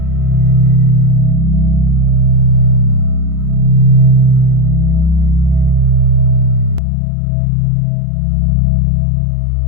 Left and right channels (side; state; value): right; drops out; at 6.8 s